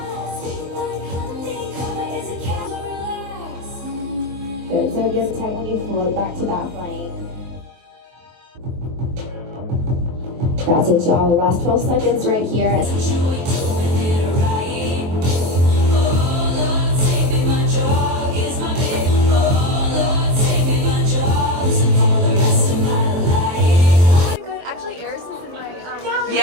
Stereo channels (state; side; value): late; left; 23 ms